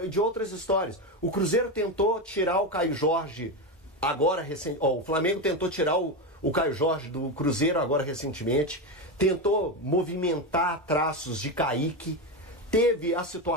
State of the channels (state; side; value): normal; both; correlation 0.14